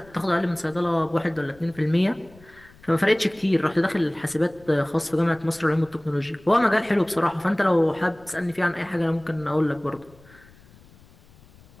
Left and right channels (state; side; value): noise; left; rumble, 26 dB below the sound